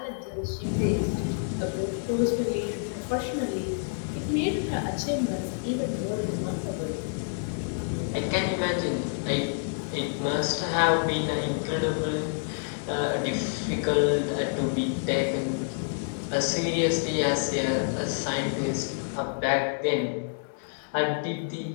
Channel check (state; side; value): silent; right; 59 dB below the other